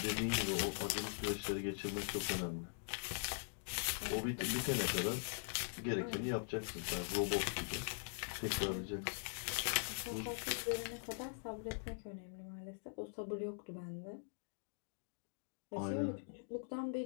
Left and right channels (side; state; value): right; silent; digital silence